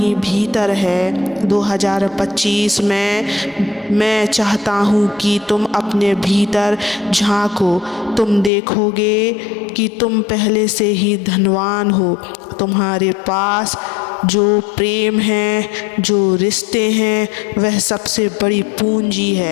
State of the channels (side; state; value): right; drops out; at 8.5 s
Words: भीतर है। 2025 में मैं चाहता हूँ कि तुम अपने भीतर झांको। तुम देखोगे कि तुम पहले से ही धनवान हो। तुम्हारे पास जो प्रेम है, जो रिश्ते हैं, वह सबसे बड़ी पूंजी